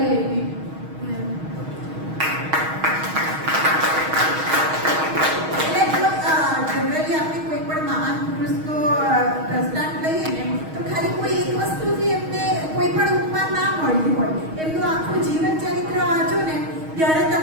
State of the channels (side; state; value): left; late; 6.3 ms